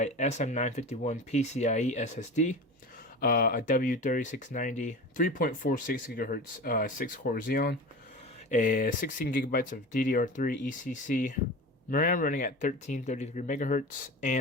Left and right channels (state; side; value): normal; both; correlation 0.31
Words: SM951 PCIe SSD, a W3690 3.46 GHz 6-core Xeon, a 16 gigabytes of DDR3 ECC, RAM running at 1333 megahertz,